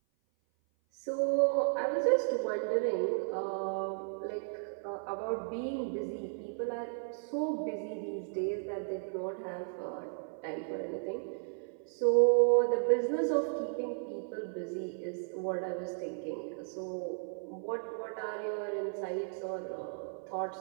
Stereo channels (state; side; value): silent; left; 55 dB below the other